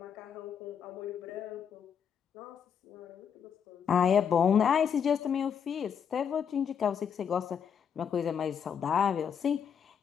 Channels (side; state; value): right; quieter; 7.6 dB